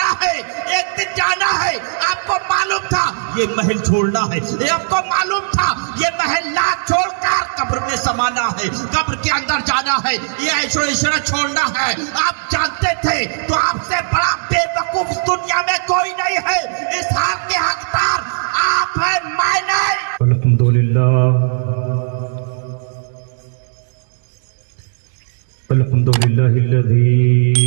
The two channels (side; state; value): left; silent; digital silence